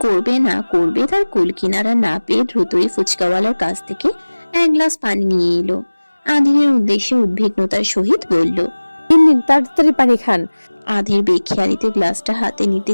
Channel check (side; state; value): both; inverted; correlation -1.00